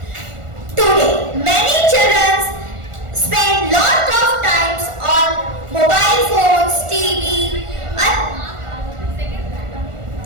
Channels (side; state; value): left; late; 1.4 ms